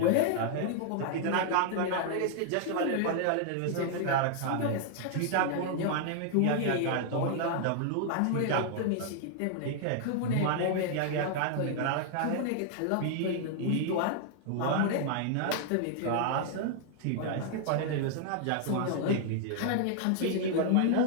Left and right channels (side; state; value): both; different; correlation 0.00